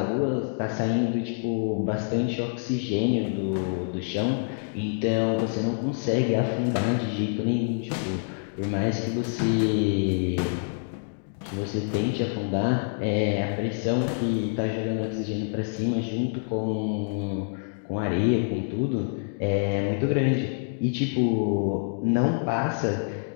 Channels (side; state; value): right; silent; digital silence